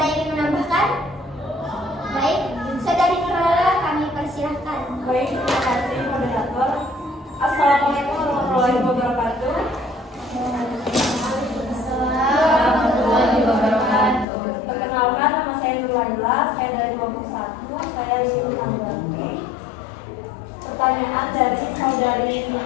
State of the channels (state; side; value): drops out; right; at 14.2 s